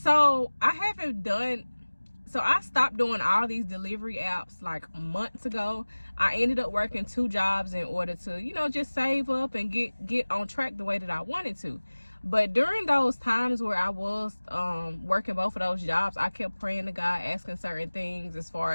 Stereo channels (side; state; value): both; inverted; correlation -1.00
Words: So I stopped doing all these delivery apps like months ago. I ended up working 2 jobs in order to, just save up and get on track the way that I wanted to. But during those times where I was working both of those jobs, I kept praying to God, asking certain things as